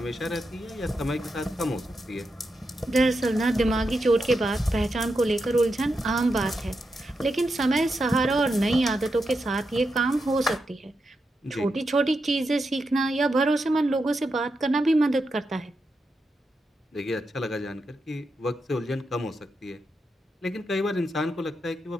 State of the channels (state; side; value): normal; both; correlation 0.86